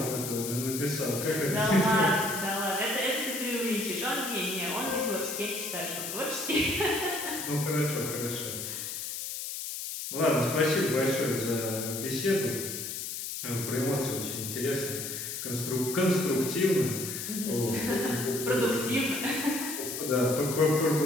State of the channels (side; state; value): left; noise; hiss, 5 dB below the sound